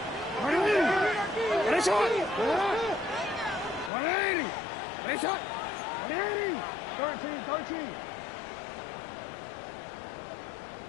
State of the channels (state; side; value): drops out; right; at 3.9 s